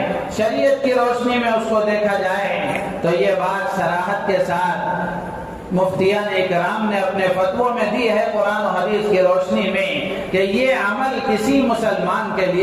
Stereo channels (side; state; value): both; identical; correlation 1.00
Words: شریعت کی روشنی میں اس کو دیکھا جائے، تو یہ بات صراحت کے ساتھ مفتیان اکرام نے اپنے فتووں میں دی ہے قرآن و حدیث کی روشنی میں کہ یہ عمل کسی مسلمان کے